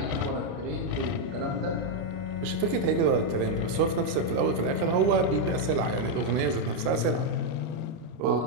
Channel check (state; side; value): late; left; 30 ms